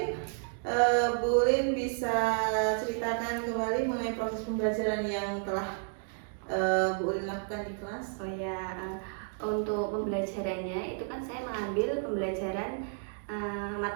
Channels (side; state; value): left; silent; 57 dB below the other